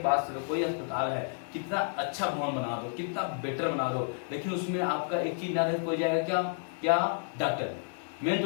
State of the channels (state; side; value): silent; right; digital silence